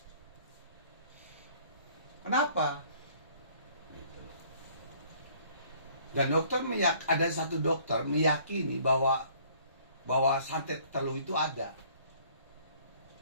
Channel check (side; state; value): both; inverted; correlation -0.58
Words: Kenapa? Gitu. Dan dokter ada satu dokter meyakini bahwa santet telu itu ada.